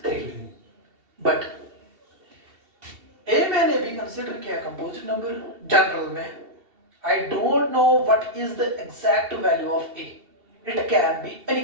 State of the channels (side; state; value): left; late; 2.7 ms